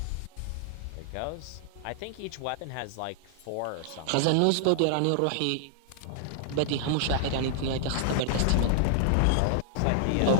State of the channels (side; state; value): both; different; correlation -0.01